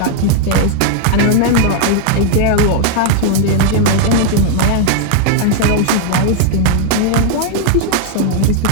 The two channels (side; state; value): both; different; correlation 0.00